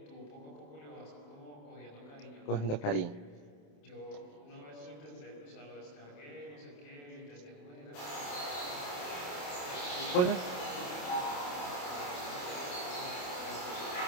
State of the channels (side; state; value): right; late; 28 ms